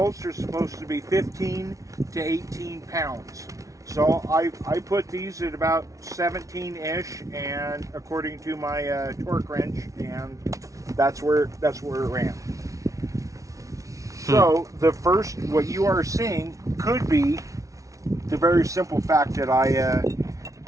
are supposed to be 15 to 18 pounds. So I put these at about 17-ish, and according to my torque wrench, and that's where it ran. So the first, what you are seeing could be the very simple fact that I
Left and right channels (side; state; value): left; late; 0.16 ms